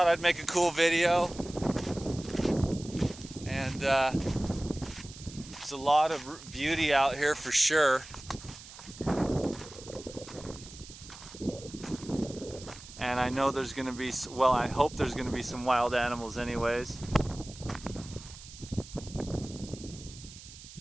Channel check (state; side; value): noise; right; hiss, 16 dB below the sound